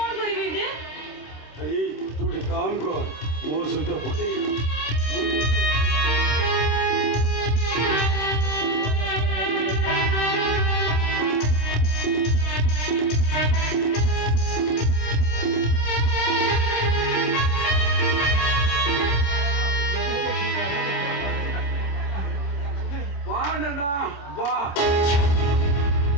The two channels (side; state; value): right; late; 26 ms